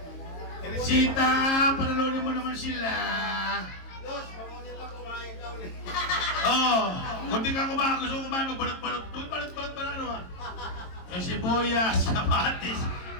Teresita, panalunin mo naman sila. Los, mamunit lang kumain ka ulit. Oh, kung di ka kumain, gusto ko kumain, magbalot-balot. Balot-balot pa ano ha? Yung sibuyas, kamatis,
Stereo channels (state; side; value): late; right; 22 ms